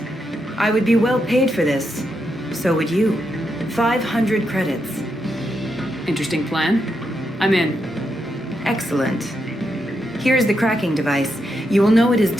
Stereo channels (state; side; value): normal; both; correlation 0.83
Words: I would be well paid for this. So would you. 500 credits. Interesting plan. I'm in. Excellent. Here's the cracking device. You will know it is